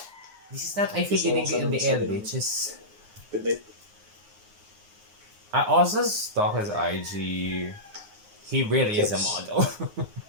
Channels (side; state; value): left; late; 9.6 ms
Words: This is not I feel lingering in the air, bitches. Good night. I also stalk his IG. He really is a model.